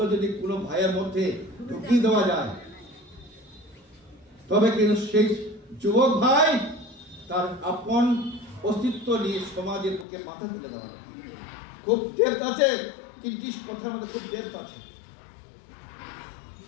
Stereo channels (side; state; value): right; drops out; at 10.1 s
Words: যদি কোনো ভাইয়ের মধ্যে ঢুকিয়ে দেওয়া যায়, তবে কিন্তু সেই যুবক ভাই তার আপন অস্তিত্ব নিয়ে সমাজের পক্ষে মাথা তুলে দাঁড়াবে। খুব ডেপথ আছে, 3টি কথার মধ্যে খুব ডেপথ আছে।